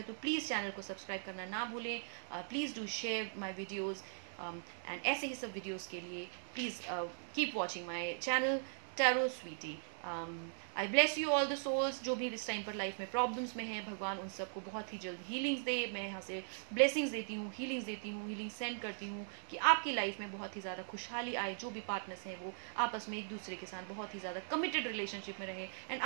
तो प्लीज़ चैनल को सब्सक्राइब करना ना भूलें। Please do share my videos, and ऐसे ही सब वीडियोज़ के लिए please keep watching my channel Tarot Sweety. I bless you all the souls. जो भी इस टाइम पर लाइफ में प्रॉब्लम्स में हैं, भगवान उन सबको बहुत ही जल्द हीलिंग्स दे। मैं यहाँ से ब्लेसिंग्स देती हूँ, हीलिंग्स देती हूँ, हीलिंग सेंड करती हूँ कि आपकी लाइफ में बहुत ही ज़्यादा खुशहाली आए। जो भी पार्टनर्स हैं वो आपस में एक दूसरे के साथ बहुत ही ज़्यादा कमिटेड रिलेशनशिप में रहें, एंड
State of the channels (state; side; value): silent; left; 51 dB below the other